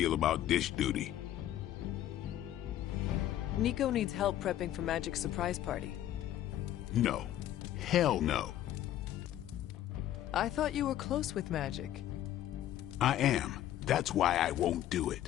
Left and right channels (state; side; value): quieter; right; 12.4 dB